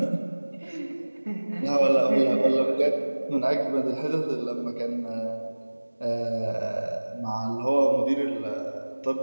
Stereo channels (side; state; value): both; inverted; correlation -1.00